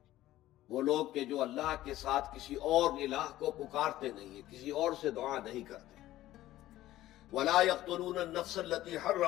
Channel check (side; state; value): right; quieter; 14.9 dB